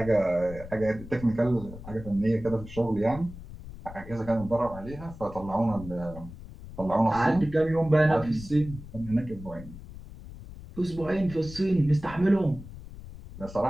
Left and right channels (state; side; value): noise; left; rumble, 14 dB below the sound